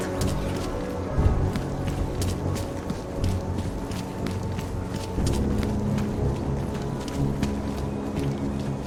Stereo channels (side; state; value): both; identical; correlation 1.00